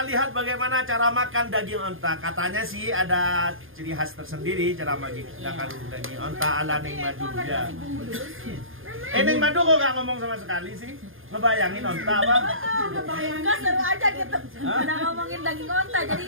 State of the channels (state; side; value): late; left; 0.59 ms